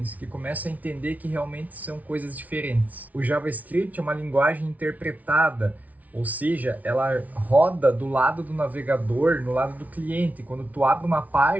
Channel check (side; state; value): left; late; 0.073 ms